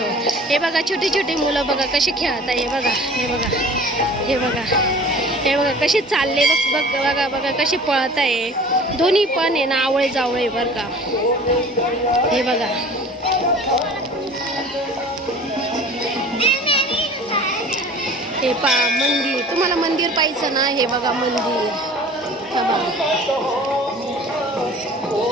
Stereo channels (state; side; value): normal; both; correlation 0.44